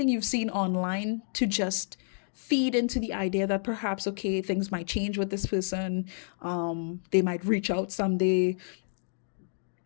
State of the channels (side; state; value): right; silent; digital silence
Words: you've seen online to just feed into the idea that perhaps, okay, things might change with this person. They might reach out someday.